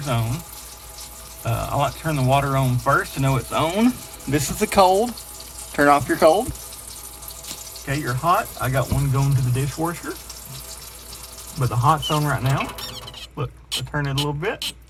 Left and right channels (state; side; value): identical; both; correlation 1.00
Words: on. I like to turn the water on first to know it's on. This is the cold. Turn off your cold. Okay, you're hot. I got one going to the dishwasher. But the hot's on right now. Look, I turn it a little bit.